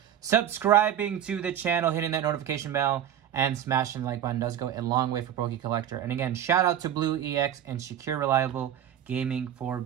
subscribing to the channel, hitting that notification bell, and smashing the like button. Does go a long way for Collector. And again, shout out to Blue EX and Secure Reliable Gaming for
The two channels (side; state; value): left; quieter; 10.2 dB